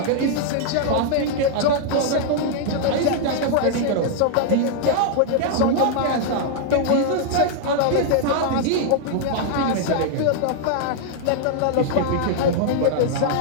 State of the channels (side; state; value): both; different; correlation -0.01